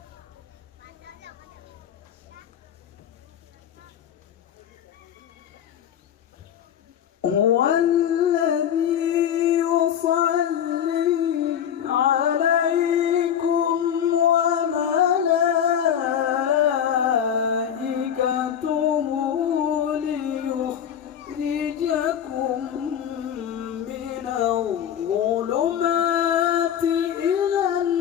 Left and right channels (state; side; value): quieter; right; 9.2 dB